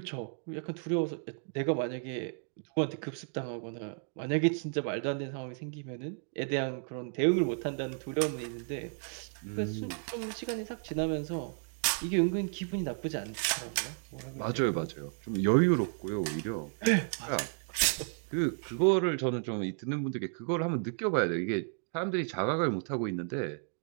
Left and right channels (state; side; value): silent; left; 56 dB below the other